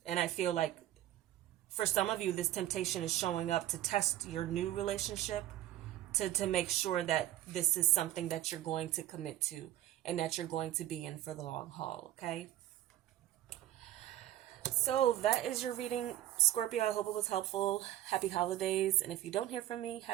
And I feel like for some of you, this temptation is showing up to test your new relationship, to make sure that this is something that you're going to commit to and that you're going to be in for the long haul. Okay. So that is your reading, Scorpio. I hope it was helpful. Happy holidays. And if you don't hear from me,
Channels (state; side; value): quieter; left; 13.6 dB